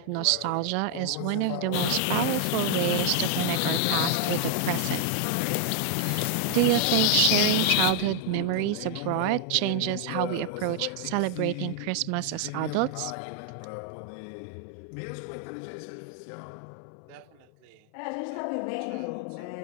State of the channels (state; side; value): different; both; correlation 0.00